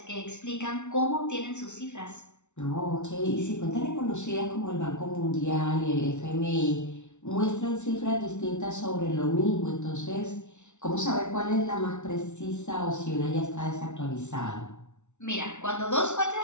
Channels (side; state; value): right; late; 0.83 ms